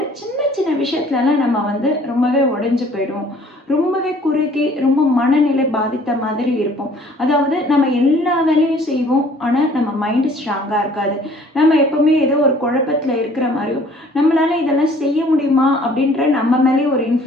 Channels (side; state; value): both; normal; correlation 0.55